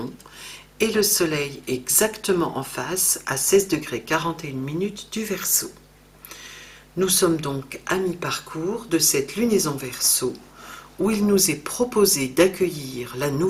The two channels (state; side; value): identical; both; correlation 1.00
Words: et le Soleil exactement en face à 16 degrés 41 minutes du Verseau. Nous sommes donc à mi-parcours de cette lunaison Verseau où il nous est proposé d'accueillir la